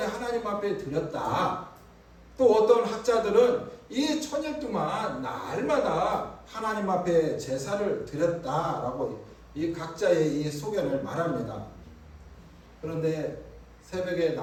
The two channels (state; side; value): identical; both; correlation 1.00